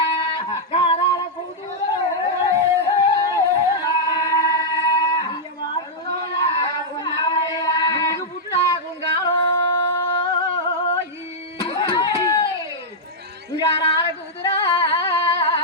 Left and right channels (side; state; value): both; normal; correlation -0.06